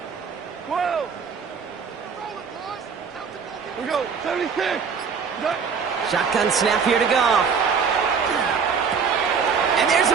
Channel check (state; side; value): quieter; left; 6.0 dB